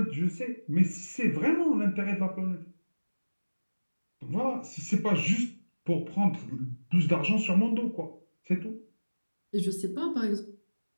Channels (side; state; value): both; inverted; correlation -1.00